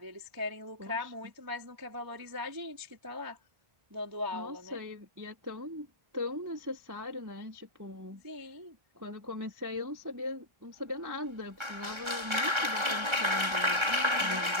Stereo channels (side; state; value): left; late; 1.3 ms